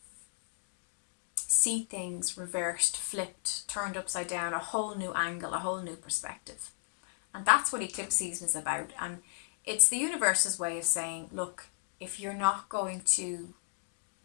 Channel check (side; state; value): right; silent; digital silence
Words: see things reversed, flipped, turned upside down, a whole new angle, a whole new perspective. And that's what eclipse season is about. And it's the universe's way of saying, look, if you're not going to